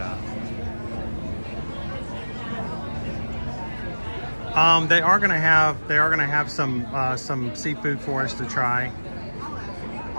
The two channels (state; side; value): inverted; both; correlation -1.00